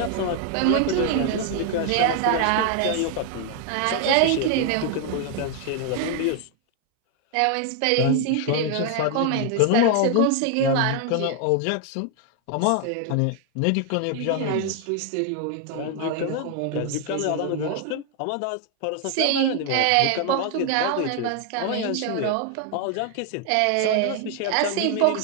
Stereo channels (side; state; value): both; different; correlation 0.00